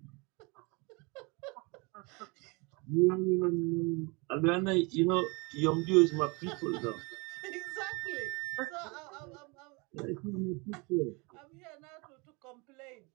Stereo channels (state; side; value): quieter; left; 28.6 dB